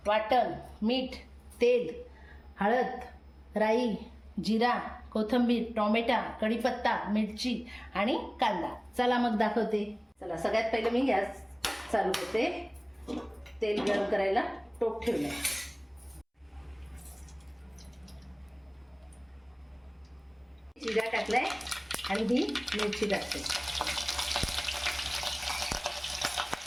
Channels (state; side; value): identical; both; correlation 1.00